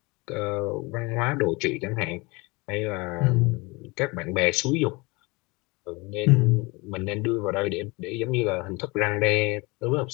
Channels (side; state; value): right; quieter; 25.6 dB